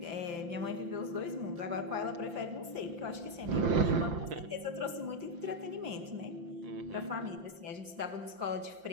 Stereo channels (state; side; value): late; left; 5.8 ms